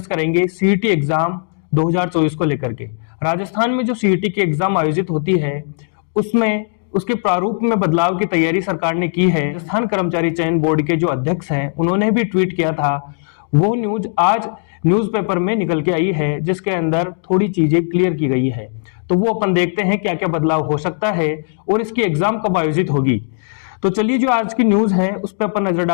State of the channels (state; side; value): silent; right; digital silence